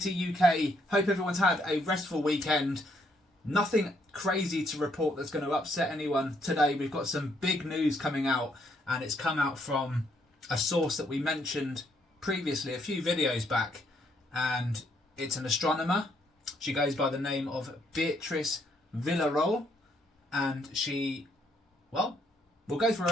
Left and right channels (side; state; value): both; normal; correlation 0.72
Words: UK. Hope everyone's had a restful weekend. Nothing crazy to report that's going to upset anyone today. We've got some big news coming out, and it's come out from a source that we mentioned previously a few videos back, and it's an astronomer. She goes by the name of Beatrice Villarreal, and she, well, we'll go through